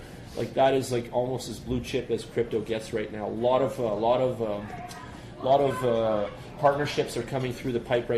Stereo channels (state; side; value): identical; both; correlation 1.00